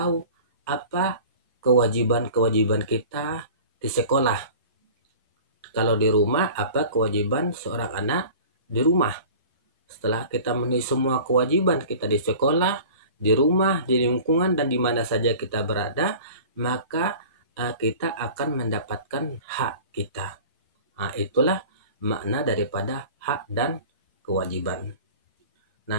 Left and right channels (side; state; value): both; inverted; correlation -0.41